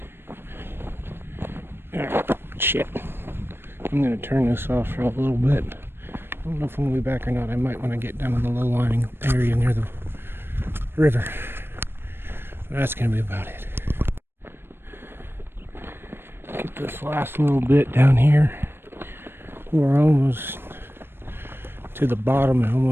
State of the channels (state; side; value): late; left; 0.11 ms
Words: Shit. I'm gonna turn this off for a little bit. I don't know if I'm gonna be back or not. I might when I get down in the low lying area near the river. But that's gonna be about it. Get this last little bit down here. We're almost to the bottom and